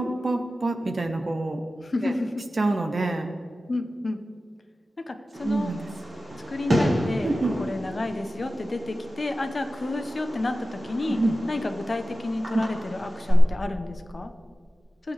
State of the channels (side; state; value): both; normal; correlation 0.95